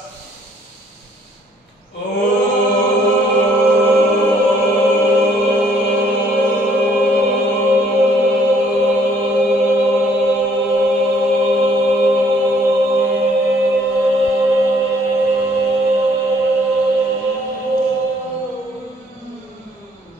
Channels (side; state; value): both; normal; correlation 0.63